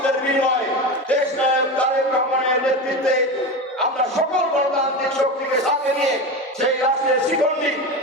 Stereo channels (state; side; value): normal; both; correlation 0.23